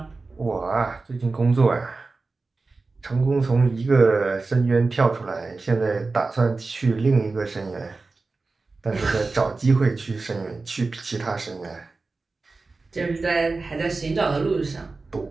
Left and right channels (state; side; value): quieter; left; 3.8 dB